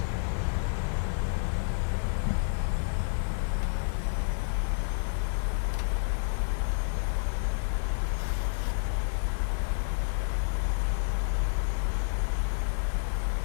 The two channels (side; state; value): right; silent; digital silence